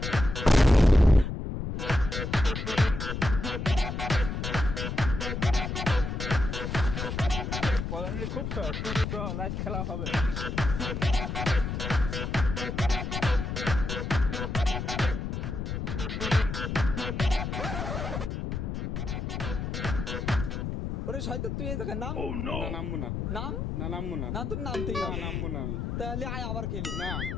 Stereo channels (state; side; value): noise; left; rumble, 4 dB below the sound